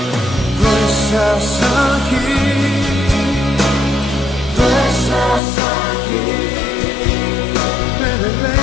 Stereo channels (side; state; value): right; drops out; at 5.4 s